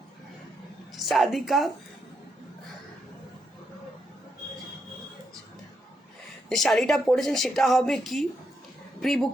সাদিকা। যে শাড়িটা পরেছেন সেটা হবে কি প্রি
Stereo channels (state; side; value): normal; both; correlation 0.81